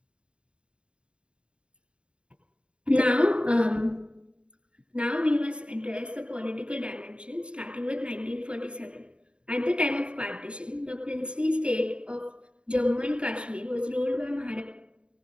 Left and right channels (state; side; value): late; left; 0.055 ms